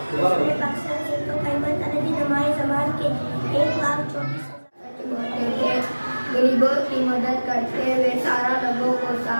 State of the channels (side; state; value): both; inverted; correlation -1.00